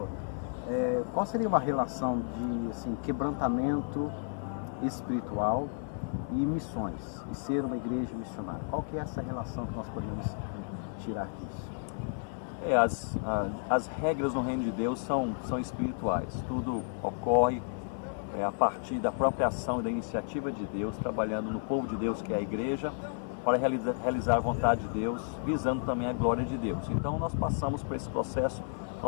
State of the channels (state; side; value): silent; right; 55 dB below the other